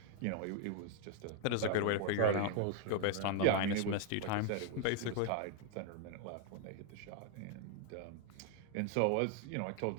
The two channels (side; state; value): both; different; correlation 0.00